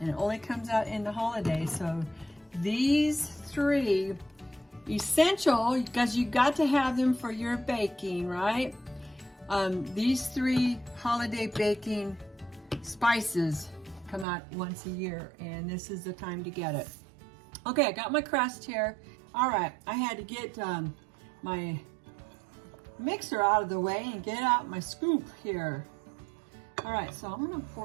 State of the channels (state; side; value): drops out; left; at 14.2 s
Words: it only comes out in the holidays. So these three, essential, because you got to have them for your baking, right? These three holiday baking spices come out once a year, and this is the time to get it. Okay, I got my crust here. All right, I had to get my mixer out of the way and get out my scoop here. All right, so I'm gonna